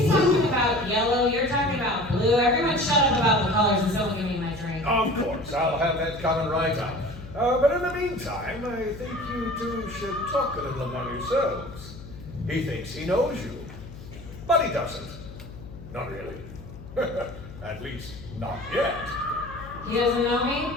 talking about yellow, you're talking about blue. Everyone shut up about the colors and someone give me my drink. Of course, I'll have that coming right up. But in the meantime, I think you two should talk a little among yourselves. He thinks he knows you, but he doesn't. Not really. At least, not yet. He doesn't know me?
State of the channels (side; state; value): left; noise; hum, 15 dB below the sound